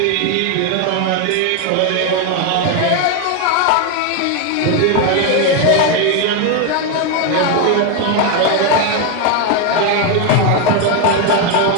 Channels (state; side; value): different; both; correlation 0.01